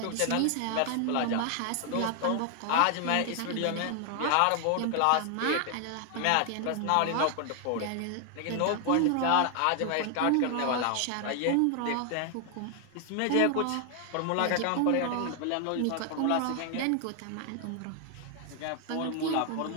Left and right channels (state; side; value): different; both; correlation 0.00